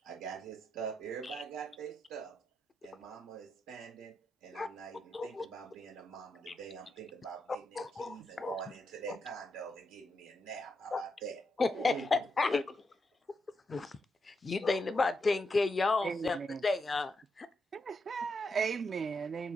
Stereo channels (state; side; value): normal; both; correlation 0.83